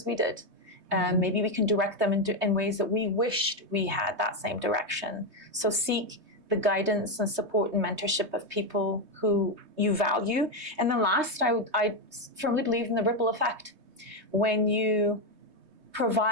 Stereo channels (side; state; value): left; late; 3.2 ms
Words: we did. Maybe we can direct them in ways that we wished we had that same direction. So seek the guidance and support and mentorship of people who you value. And then last, I firmly believe in the ripple effect. When you